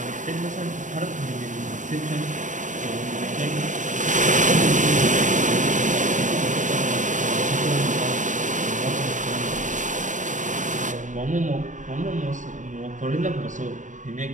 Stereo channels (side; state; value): left; late; 0.36 ms